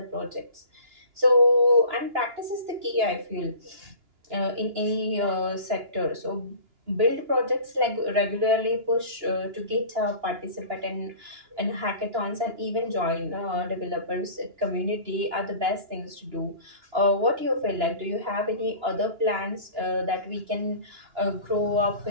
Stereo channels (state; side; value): late; left; 2.9 ms